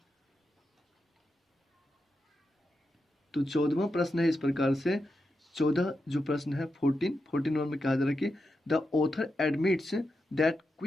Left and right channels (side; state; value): both; normal; correlation 0.87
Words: तो 14वां प्रश्न है इस प्रकार से, 14 जो प्रश्न है 14 नंबर में कहा जा रहा है कि the author admits that